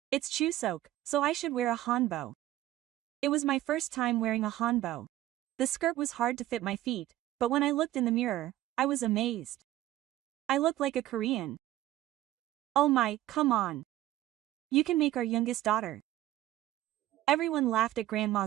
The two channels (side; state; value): left; quieter; 14.5 dB